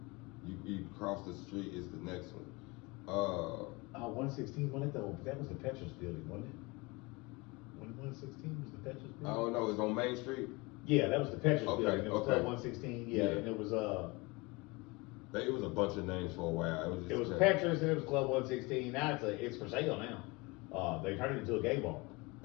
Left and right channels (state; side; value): quieter; right; 25.5 dB